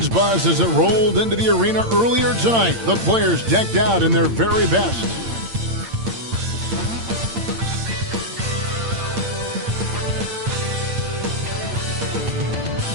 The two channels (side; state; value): left; late; 8.8 ms